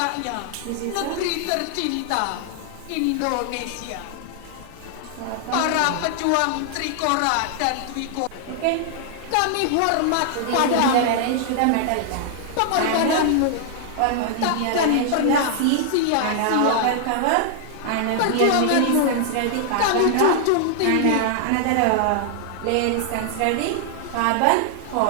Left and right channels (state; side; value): different; both; correlation 0.00